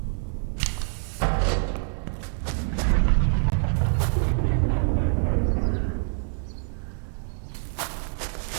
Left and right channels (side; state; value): left; silent; digital silence